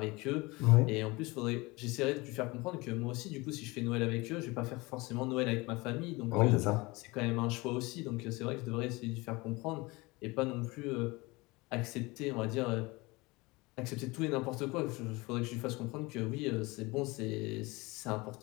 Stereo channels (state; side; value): quieter; right; 23.7 dB